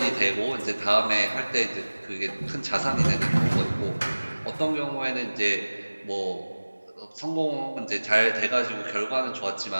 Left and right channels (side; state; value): both; inverted; correlation -1.00